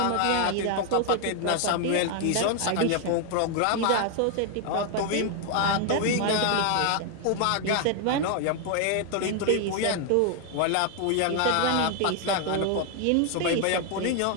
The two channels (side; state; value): both; different; correlation 0.00